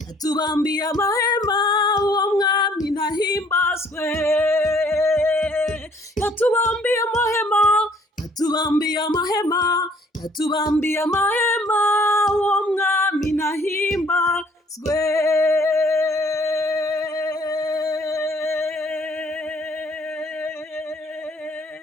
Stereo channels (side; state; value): both; normal; correlation 0.59